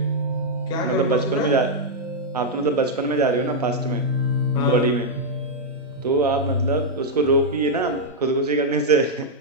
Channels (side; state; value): both; normal; correlation -0.04